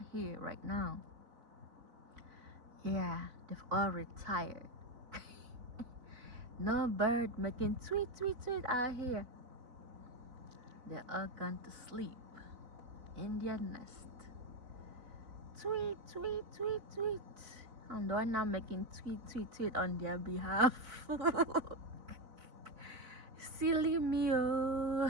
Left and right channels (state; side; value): late; left; 4.1 ms